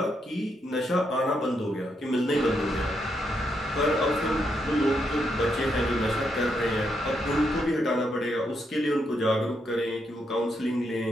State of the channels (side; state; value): both; normal; correlation 0.79